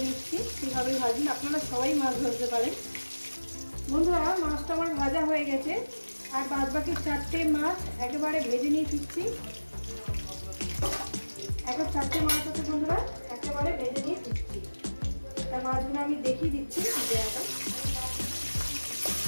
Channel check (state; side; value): inverted; both; correlation -1.00